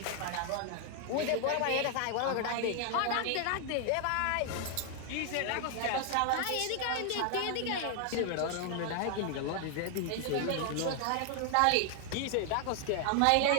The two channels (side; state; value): both; different; correlation 0.00